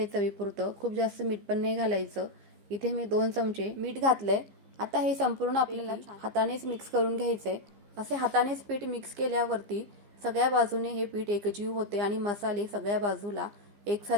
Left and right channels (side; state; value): left; late; 15 ms